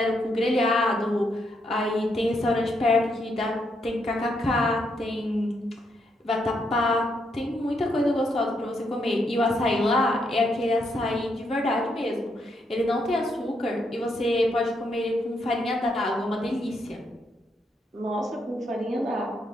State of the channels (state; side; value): normal; both; correlation 0.77